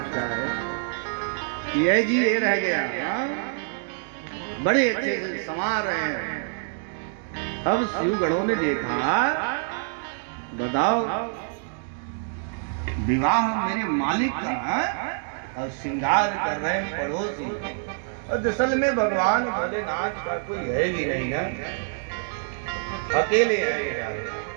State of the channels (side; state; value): left; silent; 61 dB below the other